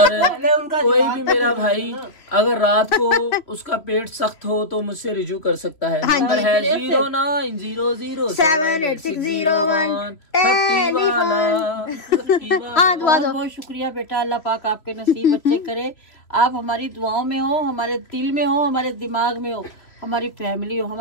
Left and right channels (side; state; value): right; late; 3.0 ms